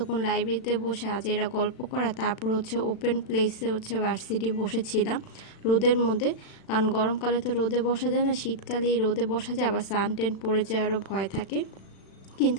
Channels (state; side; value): late; right; 36 ms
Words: লাইব্রেরিতে বসে আজ এরা গল্প করা, তারপর হচ্ছে ওপেন প্লেসে হচ্ছে ভার্সিটি বসেছিলাম রোদের মধ্যে, কারণ গরমকালে তো রোদে বসা যায় না, শীতকালে রোদে বসা যায়, আবার সানটেন পড়ে যাওয়ারও ভয় থাকে।